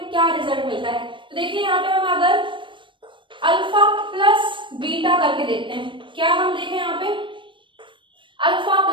क्या रिजल्ट मिलता है। तो देखिए यहाँ पे हम अगर अल्फा प्लस बीटा करके देखते हैं, क्या हम देखें यहाँ पे अल्फा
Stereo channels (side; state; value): left; late; 0.24 ms